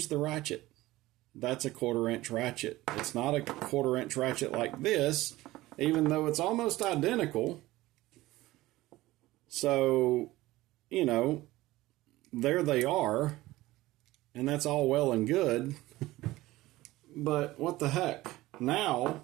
the ratchet. That's a 1/4-inch ratchet. It's not a 1/4-inch ratchet like this, even though it's almost identical. So, you know, there they are, and that's all well and good. But what the heck?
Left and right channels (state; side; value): quieter; left; 17.8 dB